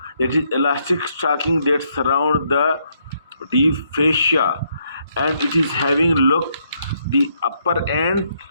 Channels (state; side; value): inverted; both; correlation -0.74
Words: that is elastic stocking that surround the deep fascia, and it is having look the upper end